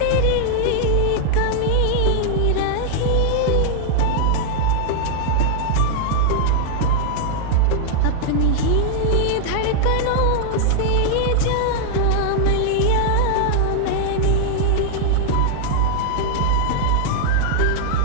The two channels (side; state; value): both; different; correlation -0.01